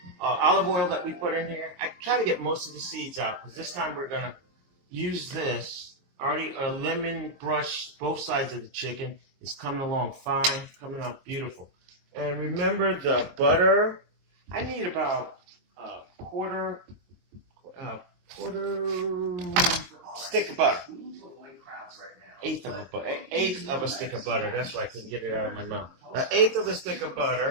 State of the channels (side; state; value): left; late; 22 ms